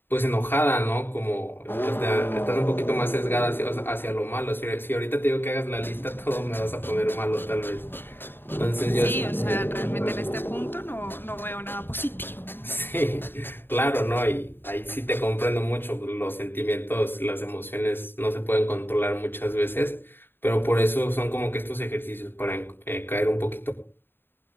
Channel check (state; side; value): late; right; 0.10 ms